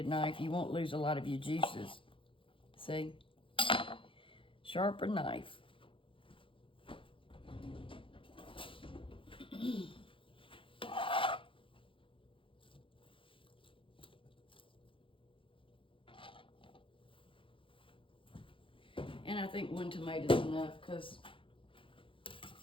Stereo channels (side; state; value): right; late; 0.25 ms